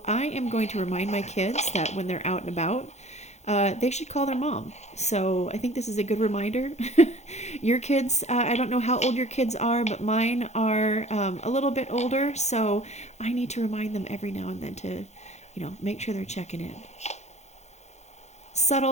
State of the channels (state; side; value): late; right; 0.33 ms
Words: I am going to remind my kids that when they're out and about, they should call their mom. So I think this is a good reminder. Your kids, I don't know how old your kids are, but mine are a little bit older. So I need to remind them every now and then to, you know, make sure they're checking in.